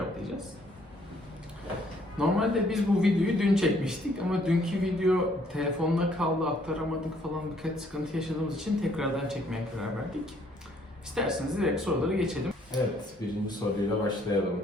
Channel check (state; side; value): normal; both; correlation 0.65